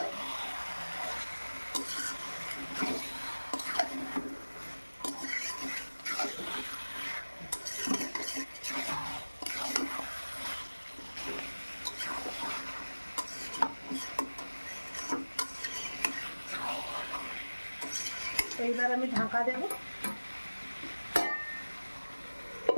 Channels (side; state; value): both; inverted; correlation -1.00